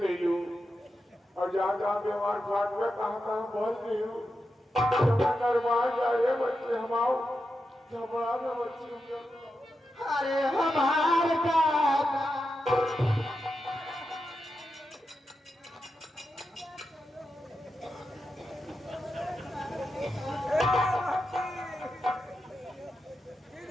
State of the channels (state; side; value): normal; both; correlation 0.88